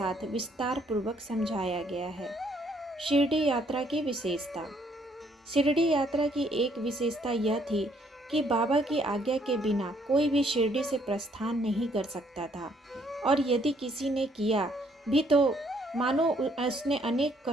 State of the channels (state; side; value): normal; both; correlation 0.67